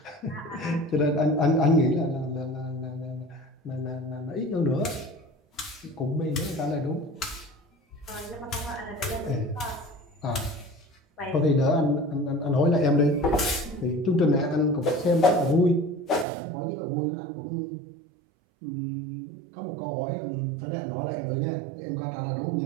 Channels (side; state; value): left; drops out; at 16.2 s